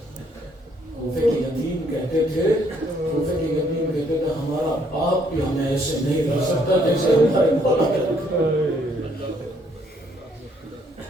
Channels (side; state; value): both; normal; correlation 0.68